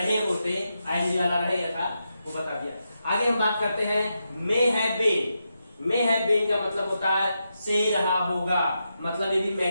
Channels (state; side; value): inverted; both; correlation -0.86